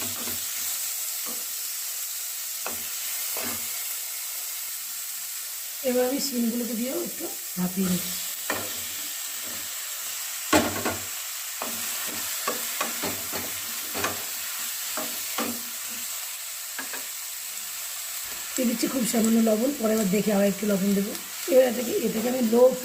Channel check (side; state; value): both; identical; correlation 1.00